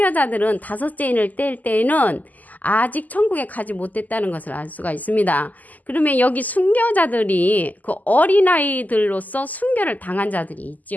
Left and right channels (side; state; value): right; late; 0.080 ms